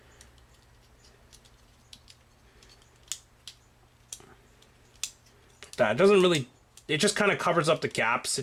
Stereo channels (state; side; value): identical; both; correlation 1.00